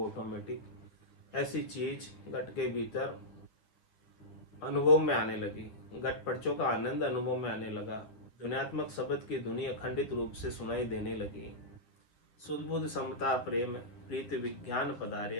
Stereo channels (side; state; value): right; late; 11 ms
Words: ऐसी चीज घट के भीतर अनुभव में आने लगी, घट पर्चों का आनंद अनुभव में आने लगा, ध्वन्यात्मक शब्द की ध्वनि अखंडित रूप से सुनाई देने लगी। शुद्ध बुद्ध समता प्रेम प्रीति विज्ञान